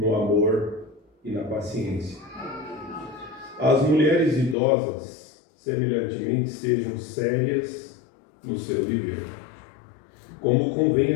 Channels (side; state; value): right; drops out; at 4.5 s